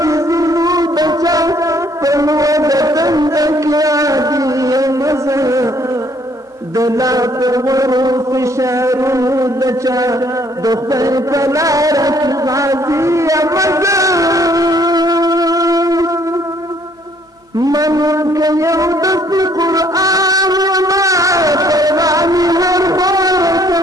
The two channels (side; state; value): both; normal; correlation 0.64